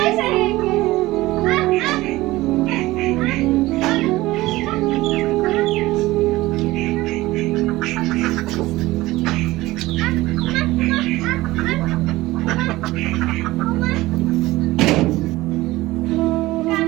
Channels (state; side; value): quieter; left; 18.4 dB